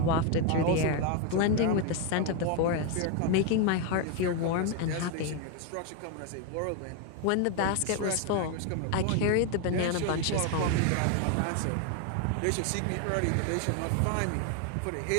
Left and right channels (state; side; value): different; both; correlation 0.01